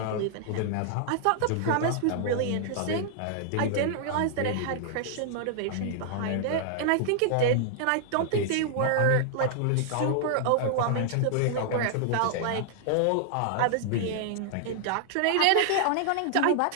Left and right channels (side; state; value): both; different; correlation -0.01